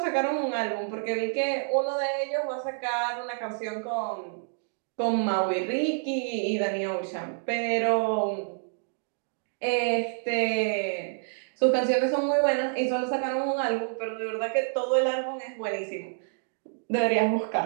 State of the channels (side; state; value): left; silent; digital silence